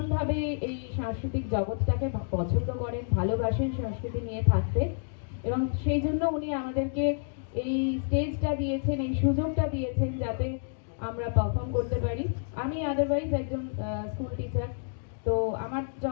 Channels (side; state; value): right; silent; digital silence